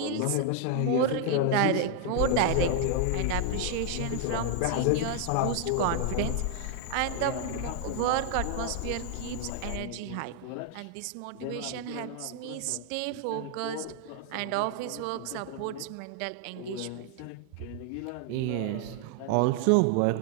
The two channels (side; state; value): both; different; correlation 0.00